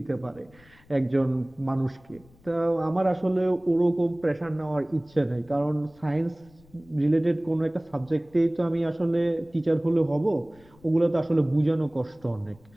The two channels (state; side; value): noise; left; rumble, 27 dB below the sound